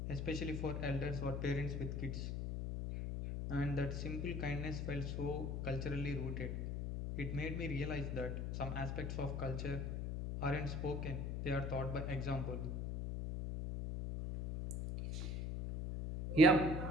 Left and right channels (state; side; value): noise; left; hum, 2 dB below the sound